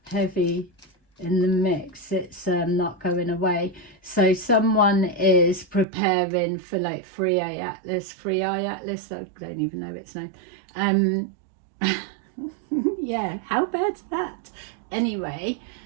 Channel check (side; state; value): left; drops out; at 5.9 s